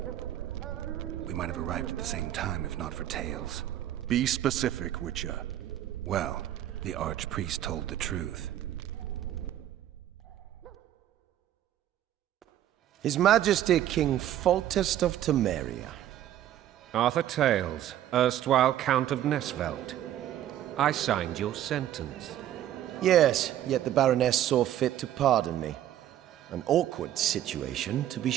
We might have arrived at the same time if not for Tales. Be specific, Witcher. Well, the Archpriest told the truth. His Majesty King Foltest of Temeria. Arthur Tales, erstwhile Count of Nesvelt. I signed your sentence. Yes, yet the Baroness saw fit to pardon me. An awkward situation, to be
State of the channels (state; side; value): quieter; left; 12.0 dB